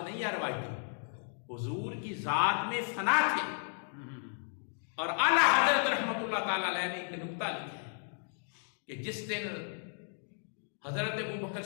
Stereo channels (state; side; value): silent; right; digital silence